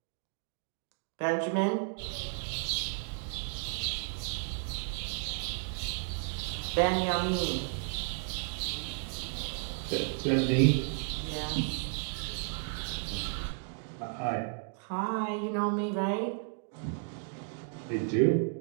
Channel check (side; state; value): left; silent; 56 dB below the other